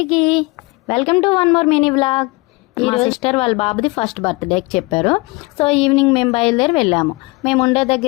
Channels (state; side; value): quieter; right; 25.2 dB